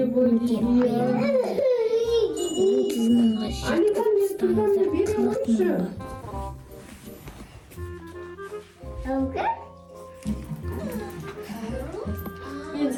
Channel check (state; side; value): identical; both; correlation 1.00